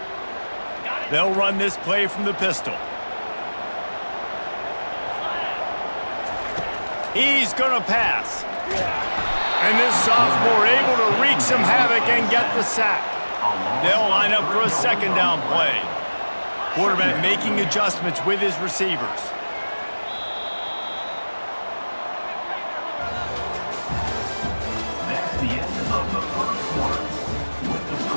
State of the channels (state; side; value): inverted; both; correlation -1.00